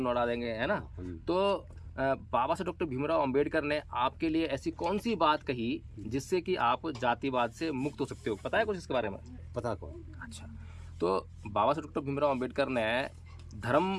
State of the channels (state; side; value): identical; both; correlation 1.00